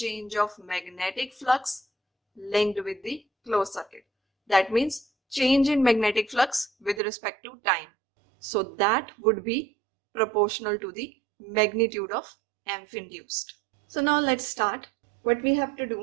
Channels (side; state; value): left; drops out; at 7.0 s